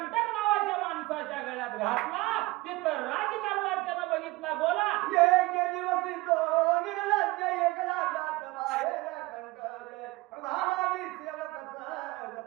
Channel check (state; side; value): quieter; left; 21.3 dB